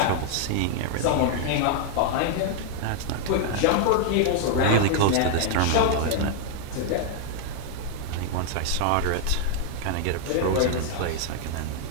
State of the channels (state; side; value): different; both; correlation 0.00